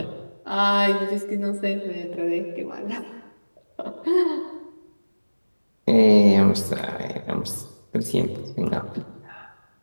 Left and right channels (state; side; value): inverted; both; correlation -1.00